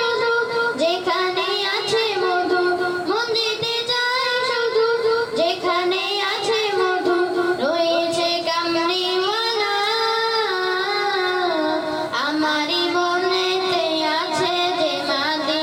যেখানে আছে মধু, মন যেতে চায় শুধু যেখানে আছে মধু। রয়েছে কামড়িওয়ালা আমারি মনেতে আছে যে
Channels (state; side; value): identical; both; correlation 1.00